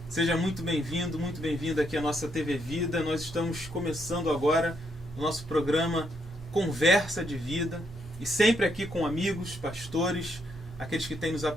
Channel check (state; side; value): normal; both; correlation 0.76